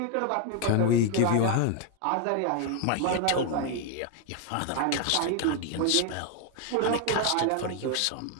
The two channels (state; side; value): different; both; correlation 0.00